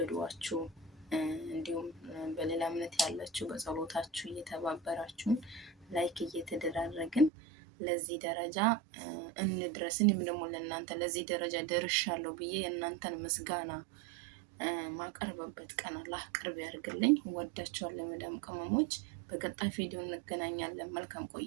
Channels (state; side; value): drops out; left; at 7.3 s